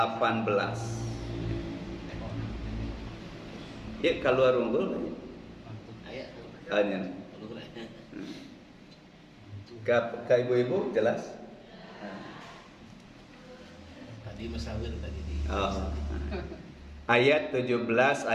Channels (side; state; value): both; identical; correlation 1.00